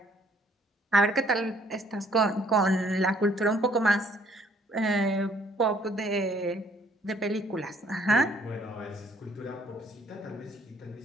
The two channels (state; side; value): normal; both; correlation 0.62